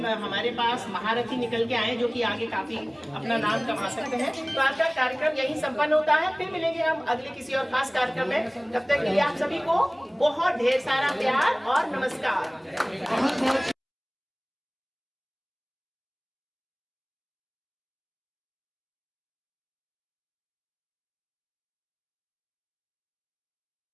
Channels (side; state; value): both; identical; correlation 1.00